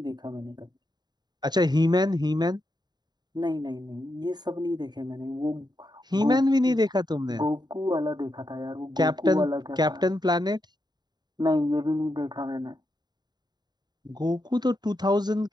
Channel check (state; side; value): late; left; 0.20 ms